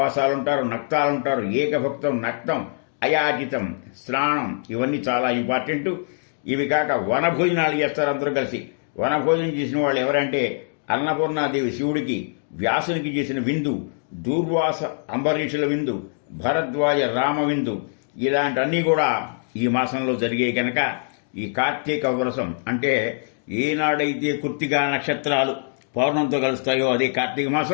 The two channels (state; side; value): silent; right; digital silence